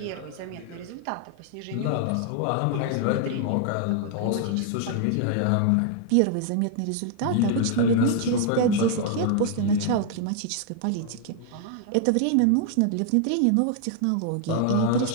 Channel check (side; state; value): both; different; correlation 0.00